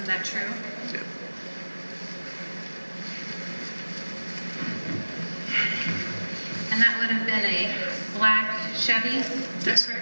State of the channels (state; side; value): inverted; both; correlation -1.00